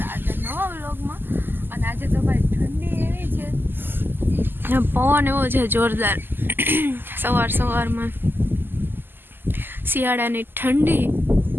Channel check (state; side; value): late; left; 0.096 ms